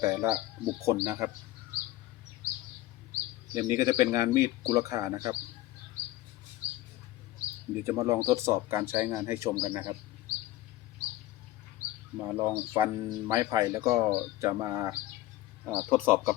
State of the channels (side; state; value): right; quieter; 15.7 dB